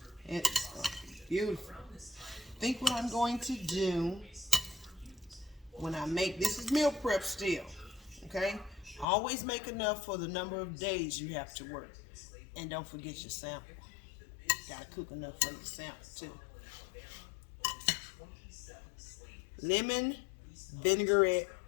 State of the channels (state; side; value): drops out; right; at 9.1 s